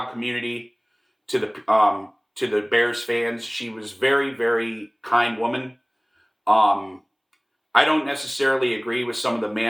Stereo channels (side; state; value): both; identical; correlation 1.00